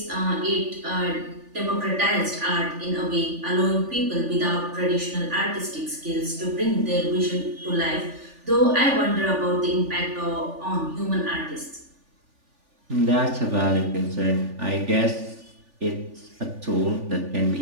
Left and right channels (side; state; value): left; late; 3.4 ms